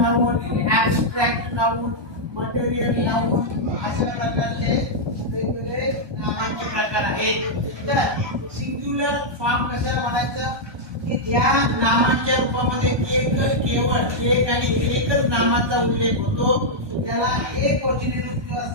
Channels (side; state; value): left; late; 1.2 ms